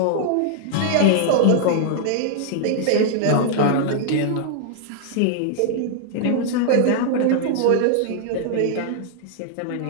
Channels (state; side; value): different; both; correlation -0.01